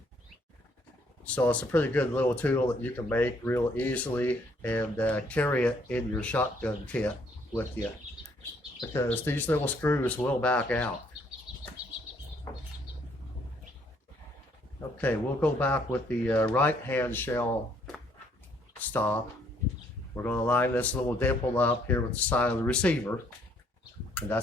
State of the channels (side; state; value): both; normal; correlation 0.66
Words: So it's a pretty good little tool that you can make real easily and carry it in your shotgun kit with you, because these little screws will back out. Okay, we'll go back with the right hand shell stop. We're going to line this little dimple up here with the side of the receiver, and